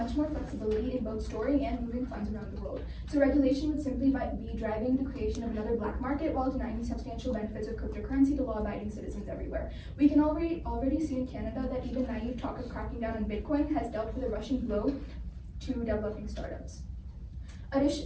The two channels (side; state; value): both; identical; correlation 1.00